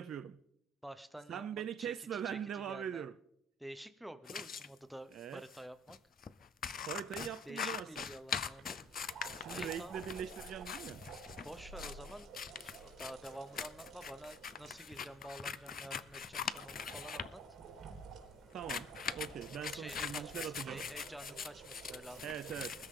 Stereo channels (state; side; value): normal; both; correlation 0.53